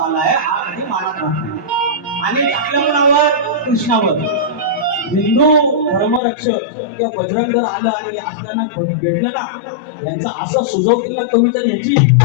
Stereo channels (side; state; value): right; drops out; at 6.2 s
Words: आहे, हा कधी मानात राहतो. आणि आपल्या मुलावर कृष्णावर हिंदू धर्मरक्षक किंवा बजरंग जर आलं आणि असताना भेटलं ना, यांचा असं सुजव केला कविता याची